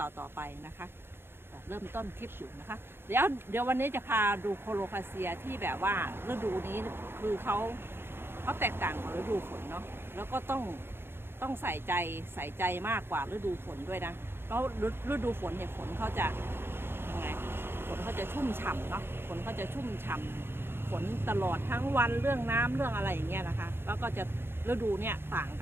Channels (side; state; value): left; late; 0.11 ms